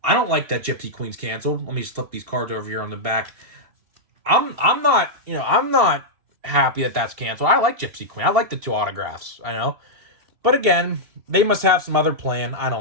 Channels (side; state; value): left; late; 3.0 ms